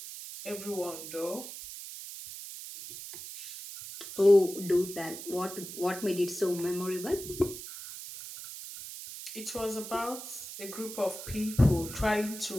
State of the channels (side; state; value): right; noise; hiss, 10 dB below the sound